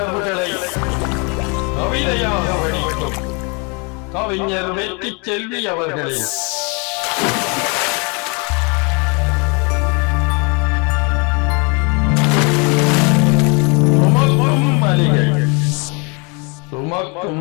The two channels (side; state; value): right; quieter; 32.6 dB